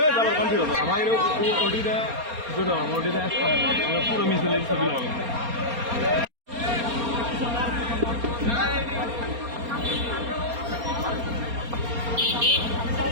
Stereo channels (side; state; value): left; late; 4.3 ms